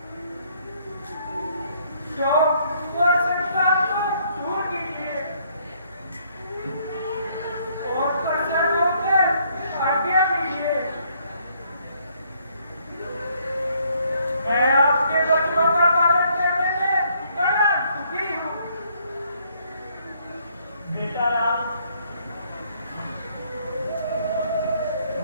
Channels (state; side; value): inverted; both; correlation -0.67